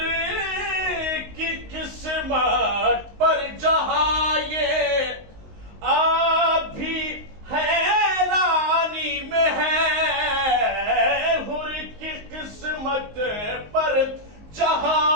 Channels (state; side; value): late; left; 19 ms